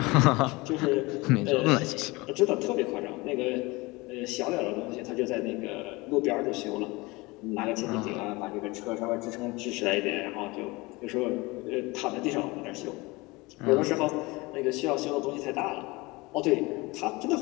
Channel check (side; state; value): right; quieter; 23.3 dB